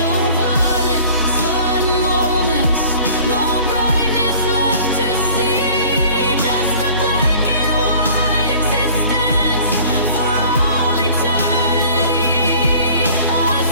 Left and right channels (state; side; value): inverted; both; correlation -0.49